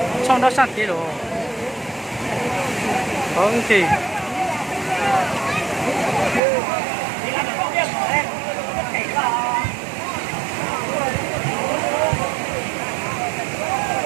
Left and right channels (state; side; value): drops out; left; at 6.4 s